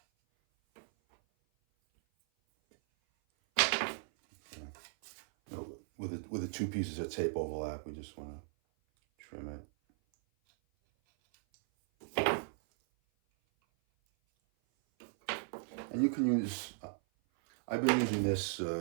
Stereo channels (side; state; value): left; silent; 53 dB below the other